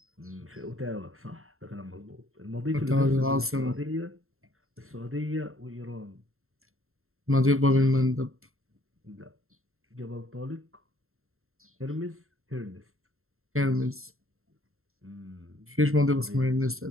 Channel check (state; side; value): late; left; 0.62 ms